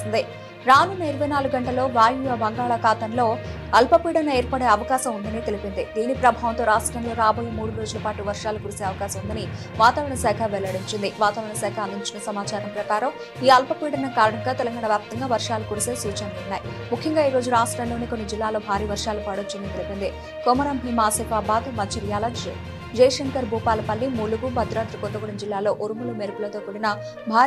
రానున్న 24 గంటల్లో వాయువ్య బంగాళాఖాతంలో అల్పపీడనం ఏర్పడే అవకాశం ఉందని తెలిపింది. దీని ప్రభావంతో రాష్ట్రంలో రాబోయే 3 రోజుల పాటు వర్షాలు కురిసే అవకాశం ఉందని వాతావరణ శాఖ వెల్లడించింది. వాతావరణ శాఖ అందించిన సమాచారం ప్రకారం ఈ అల్పపీడనం కారణంగా తెలంగాణ వ్యాప్తంగా వర్షాలు కురిసే సూచనలున్నాయి. ముఖ్యంగా ఈ రోజు రాష్ట్రంలోని కొన్ని జిల్లాల్లో భారీ వర్షాలు పడొచ్చని తెలిపింది. కొమరం భీం, ఆసిఫాబాద్, మంచిర్యాల, జయశంకర్, భూపాలపల్లి, ములుగు, భద్రాద్రి కొత్తగూడెం జిల్లాలో ఉరుములు, మెరుపులతో కూడిన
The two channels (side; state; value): both; identical; correlation 1.00